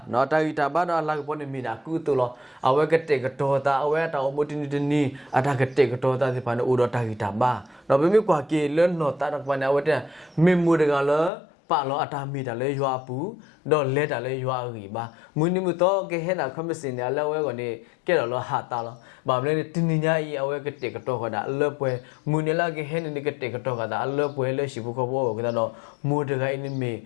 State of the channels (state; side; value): drops out; right; at 11.3 s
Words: နော်တာဂီတာပါတော့အလာပေါ်နေမီနာကူတူလောအဝဲကတဲ့ကတော့တာအဝဲတာအမူတင်နီအတာကတဲ့ကတော့တာဒီဖာနော်ဦးတော့တာဂီတာပါနော်ဘယ်မြကွာကေလနော်တာတော့ပါနေအဝဲတဲ့မေမူတကလောပါလောအတာမီတာလဲရွာပူတော့လဲတာလဲရွာရီပါမူနီမတော့ကဲဟဲနာခမစင်တယ်လဲဝဲကနေကဲတော့လောဟာတာလောဘာမလဲတင်းညာကြီးအဝဲကတဲ့ကတော့ခတာအလဲပွဲမူနီလာကဲဟဲနေကတဲ့ကတော့ခတာအလဲပွဲလဲရှိဘူးခေါ်ဘောကတော့မူတကအိနေမေ